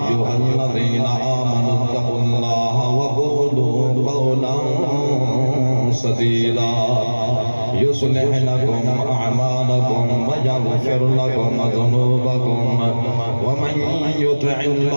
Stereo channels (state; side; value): inverted; both; correlation -1.00